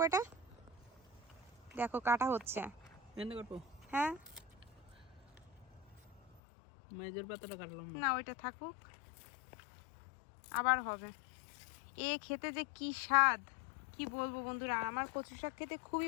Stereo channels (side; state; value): right; drops out; at 6.4 s